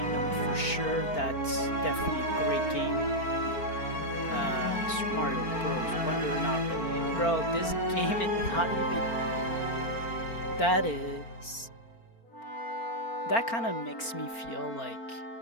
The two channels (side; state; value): right; late; 4.4 ms